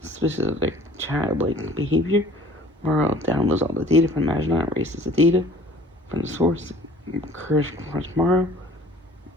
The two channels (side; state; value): both; normal; correlation 0.50